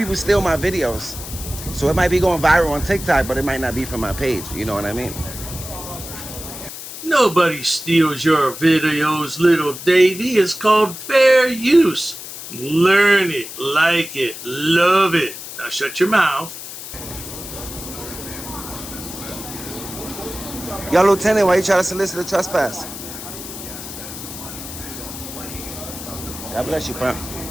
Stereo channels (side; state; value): left; noise; hiss, 11 dB below the sound